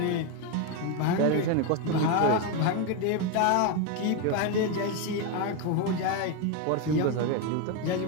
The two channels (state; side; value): different; both; correlation 0.02